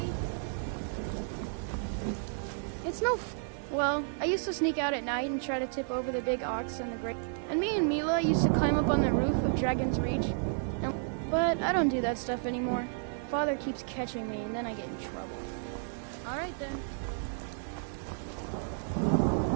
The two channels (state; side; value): silent; left; 56 dB below the other